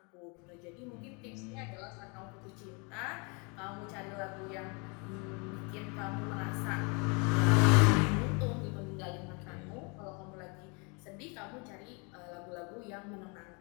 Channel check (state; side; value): quieter; right; 32.2 dB